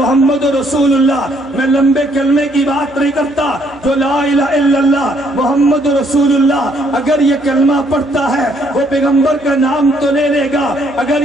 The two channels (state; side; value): noise; left; hum, 26 dB below the sound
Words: رسول اللہ، میں لمبے کلمے کی بات نہیں کرتا، جو لا الہ الا اللہ محمد رسول اللہ اگر یہ کلمہ پڑھتا ہے وہ پیغمبر کا نام تو لے لے گا، اگر